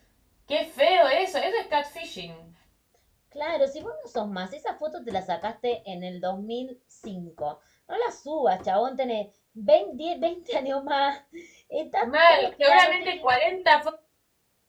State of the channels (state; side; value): identical; both; correlation 1.00